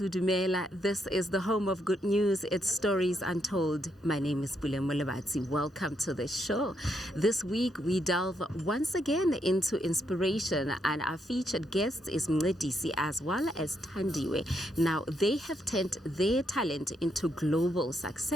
Dumela, this is the home of good news. It's Stories Untold. My name is Mqokeleli. Welcome to the show. This week we delve once again into inspiration, and our featured guest is Mncedi as well as Thandiwe. Now, they have turned their talent into global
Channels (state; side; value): normal; both; correlation 0.77